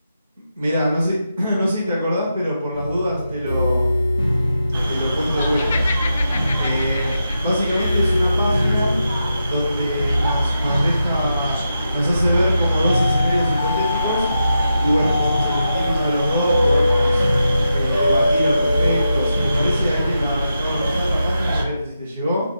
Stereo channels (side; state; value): both; inverted; correlation -0.87